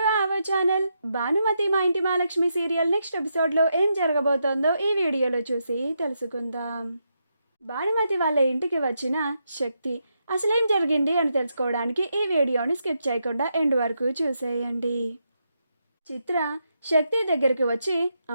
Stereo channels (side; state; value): both; inverted; correlation -0.82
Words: our channel. Bhanumathi మా ఇంటి Mahalakshmi serial next ఎపిసోడ్లో ఏం జరగబోతోందో ఈ వీడియోలో చూసి తెలుసుకుందాం. భానుమతి వాళ్ళ ఇంటికి వచ్చిన శక్తి అసలేం జరిగింది అని తెలుసుకోవడానికి ఈ వీడియోని స్కిప్ చేయకుండా ఎండ్ వరకు చూసేయండి. చిత్ర శక్తి దగ్గరికి వచ్చి,